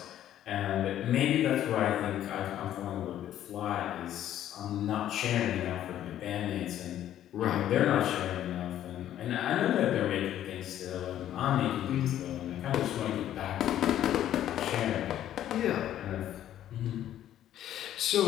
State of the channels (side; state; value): right; quieter; 11.7 dB